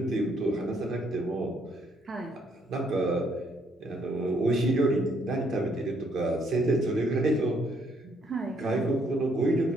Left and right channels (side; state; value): both; normal; correlation 0.70